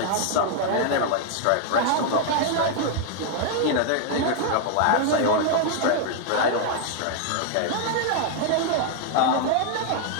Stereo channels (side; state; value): both; different; correlation 0.00